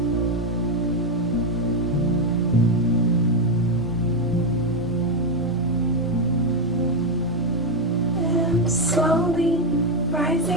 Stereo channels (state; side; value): normal; both; correlation 0.05